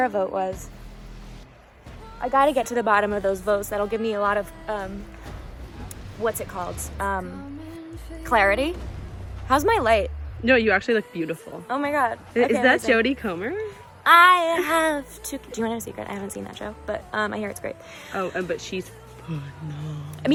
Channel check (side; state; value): both; identical; correlation 1.00